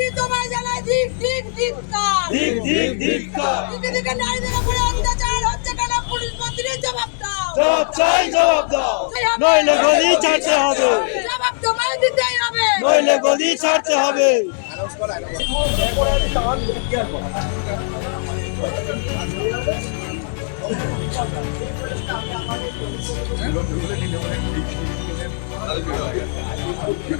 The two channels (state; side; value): silent; right; 62 dB below the other